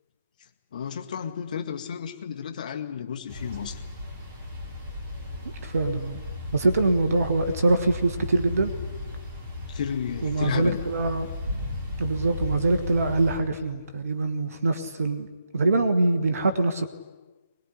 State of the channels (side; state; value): both; inverted; correlation -0.82